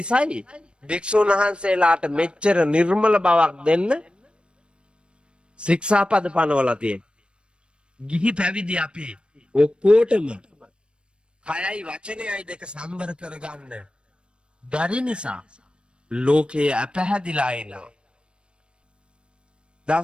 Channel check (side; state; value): left; late; 0.056 ms